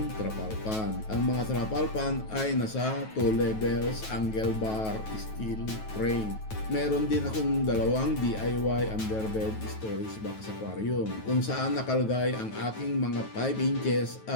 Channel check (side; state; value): right; late; 9.3 ms